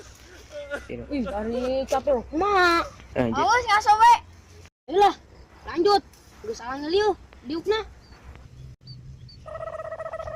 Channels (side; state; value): both; identical; correlation 1.00